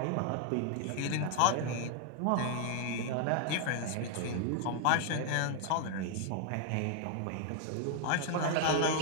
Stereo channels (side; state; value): both; different; correlation 0.00